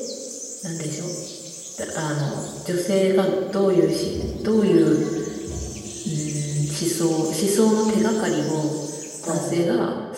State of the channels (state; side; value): identical; both; correlation 1.00